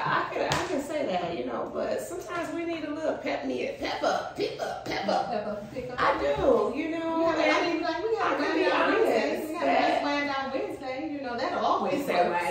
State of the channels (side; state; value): both; identical; correlation 1.00